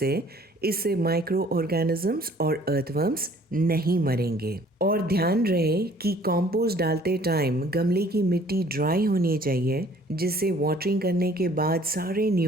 इससे माइक्रो ऑर्गेनिजम्स और अर्थवर्म्स नहीं मरेंगे। और ध्यान रहे कि कंपोस्ट डालते टाइम गमले की मिट्टी ड्राई होनी चाहिए, जिससे वाटरिंग करने के बाद सारे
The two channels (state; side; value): normal; both; correlation 0.56